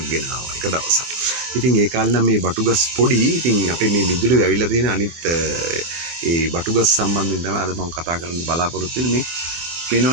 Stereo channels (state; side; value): late; left; 24 ms